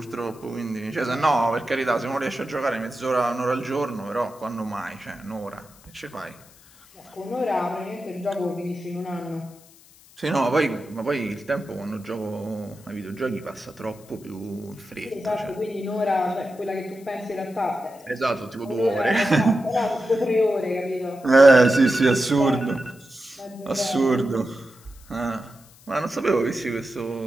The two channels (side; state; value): left; noise; hiss, 25 dB below the sound